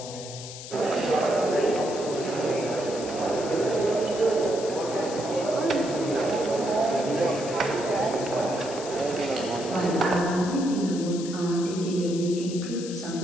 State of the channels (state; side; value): noise; left; hiss, 12 dB below the sound